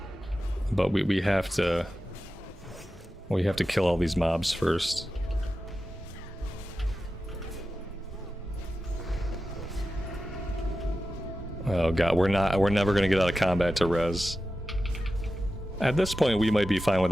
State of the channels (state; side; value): normal; both; correlation 0.92